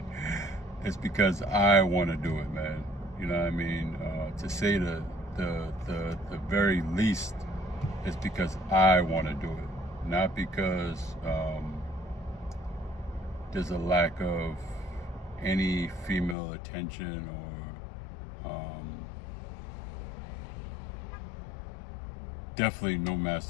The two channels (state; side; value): drops out; right; at 16.4 s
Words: It's because I want to do it, man. You know what I mean? To say the very least, it's because I want to do it. Not because there's a lack of any female attention or definitely no